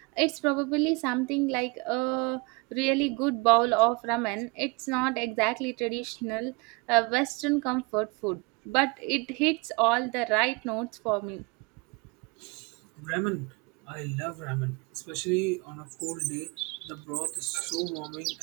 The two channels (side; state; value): left; quieter; 27.4 dB